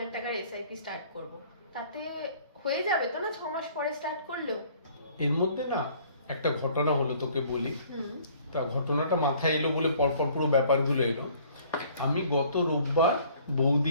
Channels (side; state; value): both; inverted; correlation -0.56